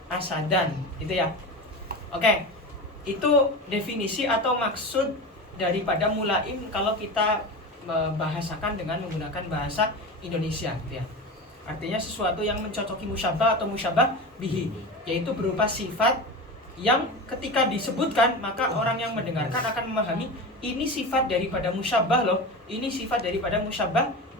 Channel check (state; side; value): normal; both; correlation 0.27